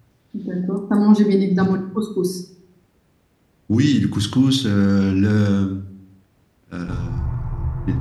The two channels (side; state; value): both; identical; correlation 1.00